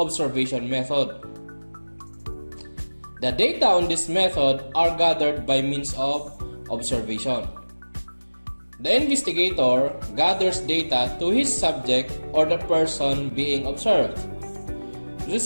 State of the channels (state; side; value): inverted; both; correlation -1.00